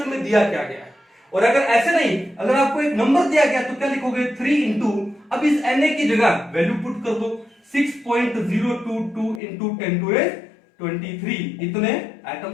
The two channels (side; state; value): right; drops out; at 9.4 s